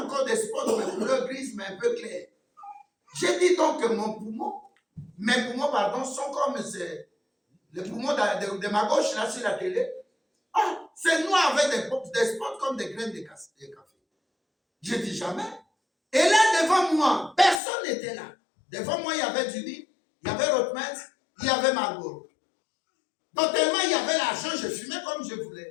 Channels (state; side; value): drops out; right; at 17.6 s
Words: encore des spots de couleur grise, mais un peu clair. J'ai dit donc que mes poumons, pardon, sont comme les poumons de ma gauche, là, sur la télé. Ah, c'est noir avec des spots comme des graines de café. Je dis jamais. Et là, devant moi, personne n'était là. Devant moi, il y avait Judy, il y avait Rothmans, il y avait Marlboro. Donc, tellement il y avait l'argent, je fumais comme je